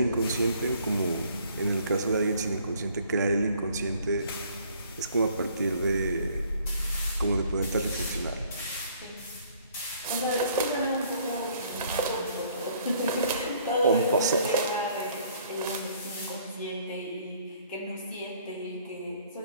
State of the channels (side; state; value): both; inverted; correlation -0.60